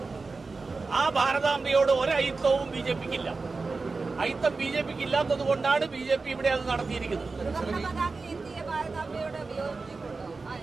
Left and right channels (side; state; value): left; quieter; 4.0 dB